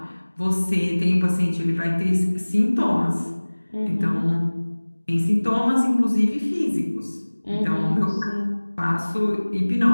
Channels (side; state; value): both; inverted; correlation -1.00